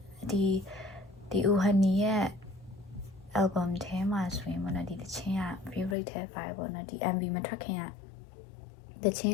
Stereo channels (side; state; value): right; drops out; at 6.0 s